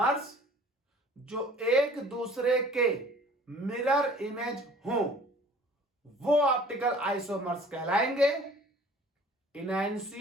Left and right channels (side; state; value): both; normal; correlation 0.50